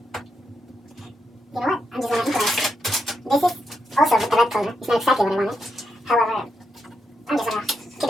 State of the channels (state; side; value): normal; both; correlation 0.82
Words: You know what? I'm just gonna improvise. This is also with the red color. It's not exactly what I wanted. However, I'm just gonna keep